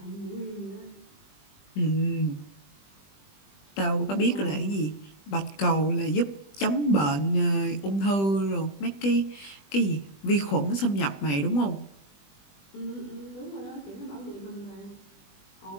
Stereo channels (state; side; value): late; right; 20 ms